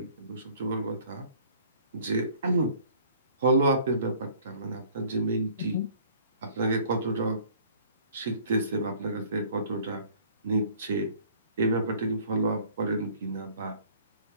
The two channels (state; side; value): inverted; both; correlation -0.54